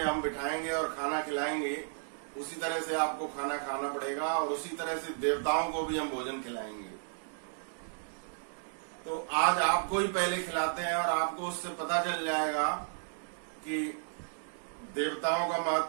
बिठाएंगे और खाना खिलाएंगे उसी तरह से आपको खाना खाना पड़ेगा और उसी तरह से देवताओं को भी हम भोजन खिलाएंगे। तो आज आपको ही पहले खिलाते हैं और आपको उससे पता चल जाएगा कि देवताओं का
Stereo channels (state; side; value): silent; left; digital silence